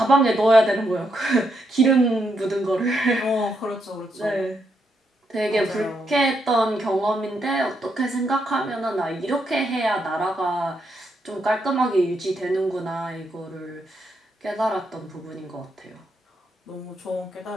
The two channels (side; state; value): both; normal; correlation 0.79